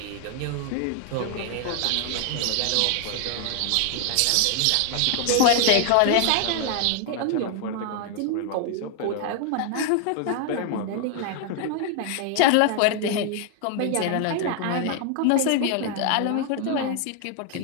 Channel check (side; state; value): both; different; correlation 0.00